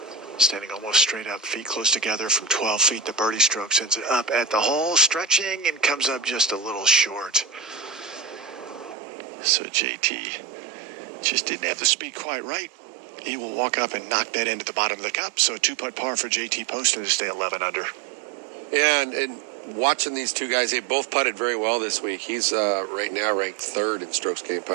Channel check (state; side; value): drops out; left; at 9.0 s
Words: standing almost straight up, feet close together from 12 feet. The birdie stroke sends it up at the hole, stretching, and comes up just a little short. So JT just didn't have the speed quite right. He will walk up and knock that into the bottom of the cup. So a 2-putt par for JT Poston to stay 11 under. Yeah, and watching these two guys, they both putted very well this week. He's right now ranked 3rd in strokes gained